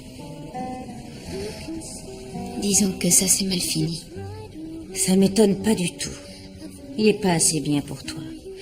Disons que ça s'est mal fini. Ça m'étonne pas du tout. Il est pas assez bien pour toi.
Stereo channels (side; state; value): both; identical; correlation 1.00